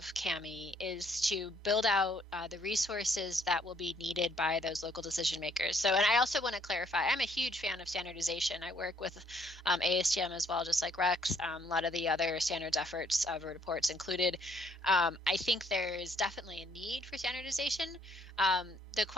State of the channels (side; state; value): both; normal; correlation 0.66